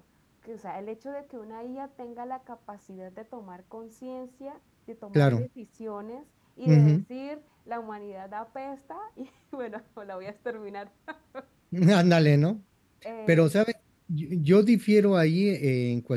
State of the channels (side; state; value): both; identical; correlation 1.00